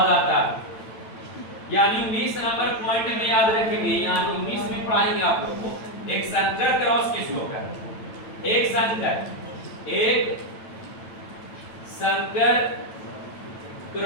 आता है। यानी 19 नंबर पॉइंट में याद रखेंगे, यानी 19 में पढ़ाएंगे आप लोग को एक संकर क्रॉस किसको कहते हैं? एक संकर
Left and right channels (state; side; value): late; right; 9.0 ms